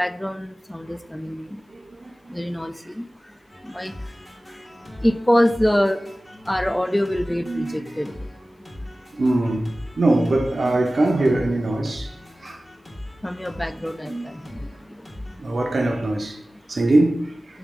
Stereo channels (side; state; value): both; normal; correlation 0.97